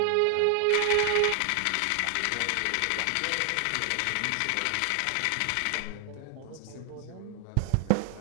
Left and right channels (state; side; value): different; both; correlation 0.00